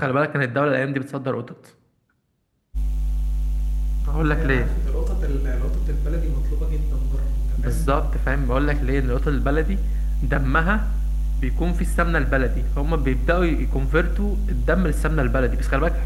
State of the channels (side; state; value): both; identical; correlation 1.00